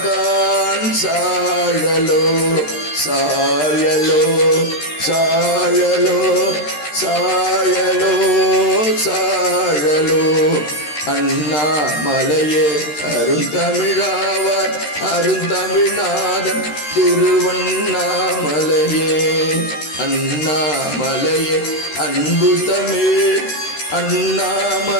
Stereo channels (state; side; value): late; right; 13 ms